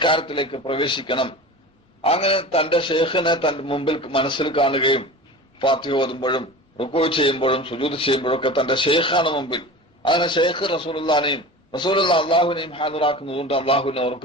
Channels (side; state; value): both; normal; correlation 0.34